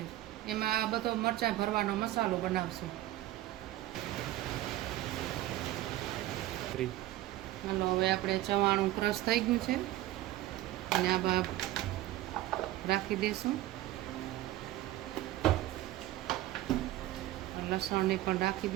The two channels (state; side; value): quieter; left; 15.6 dB